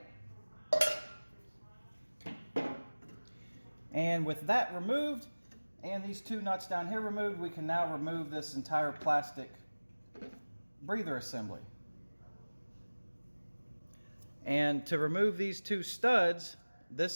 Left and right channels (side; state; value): both; inverted; correlation -1.00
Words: And with that removed, and these two nuts down here removed, we can now remove this entire plastic breather assembly. And to remove these two studs,